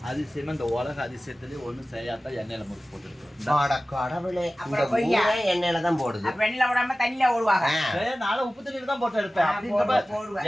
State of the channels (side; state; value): both; normal; correlation 0.96